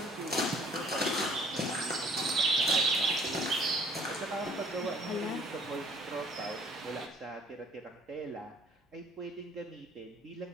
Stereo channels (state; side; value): normal; both; correlation 0.57